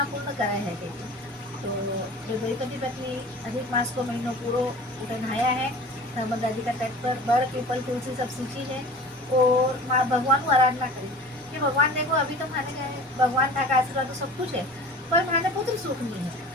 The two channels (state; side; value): normal; both; correlation 0.40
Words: पूर्ण करे है कहते। तो जो द्वैपति पत्नी अधिक मास को महीनों पूरो नहाया है, नर्मदा जी का तट पर बड़ पीपल तुलसी सब सींची है, और माँ भगवान को आराधना करी कि भगवान देखो अभी तो माने गए भगवान था का आशीर्वाद तो सब कुछ है, पर माने पुत्र सुख नहीं है,